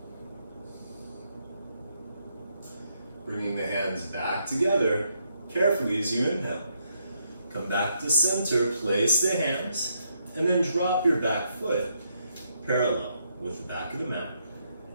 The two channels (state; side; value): inverted; both; correlation -0.76